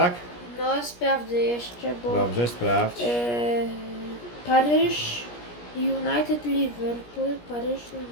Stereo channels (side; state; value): right; late; 17 ms